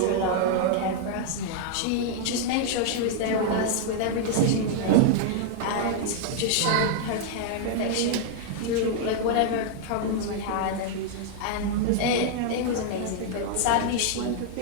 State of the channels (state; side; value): different; both; correlation 0.00